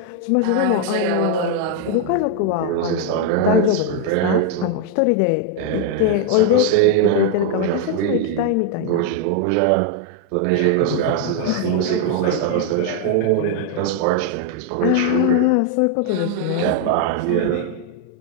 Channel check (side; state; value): both; different; correlation 0.01